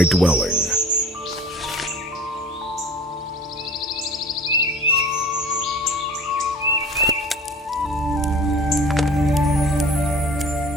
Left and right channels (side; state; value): both; normal; correlation 0.44